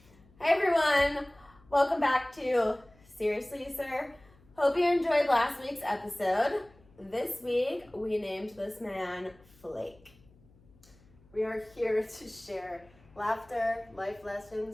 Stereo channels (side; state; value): left; noise; hum, 28 dB below the sound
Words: Hi everyone, welcome back to Seriously Sir. Hope you enjoyed last week's episode. This week we named this man Flake. We are here to share laughter, life